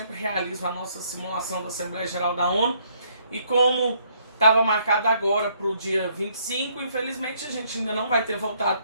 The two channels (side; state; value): both; inverted; correlation -0.67